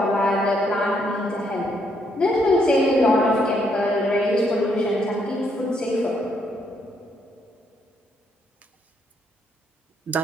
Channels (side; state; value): both; normal; correlation 0.74